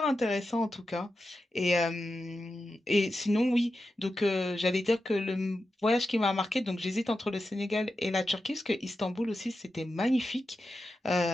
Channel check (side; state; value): both; normal; correlation 0.90